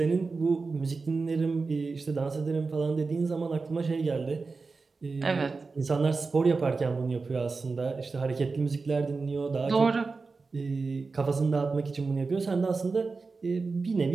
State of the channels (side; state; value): left; quieter; 4.2 dB